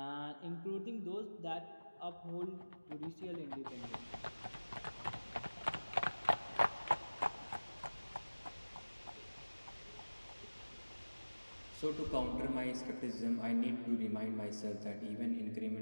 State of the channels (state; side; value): inverted; both; correlation -1.00